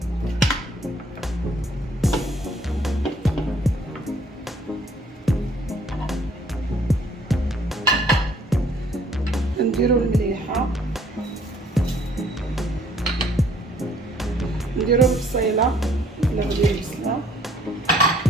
نديرو المليحه، نديرو البصيله ولا غادي البصله،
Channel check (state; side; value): normal; both; correlation 0.61